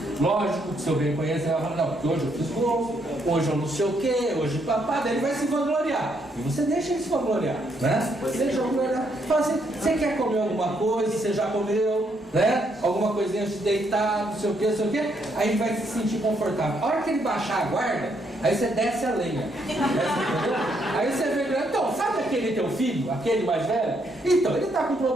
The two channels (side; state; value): both; normal; correlation 0.74